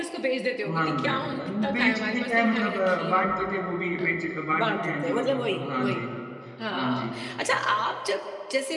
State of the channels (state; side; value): identical; both; correlation 1.00